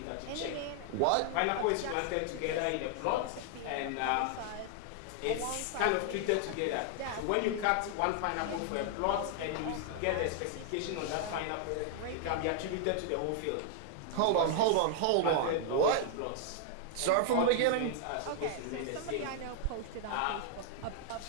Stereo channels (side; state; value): both; different; correlation -0.01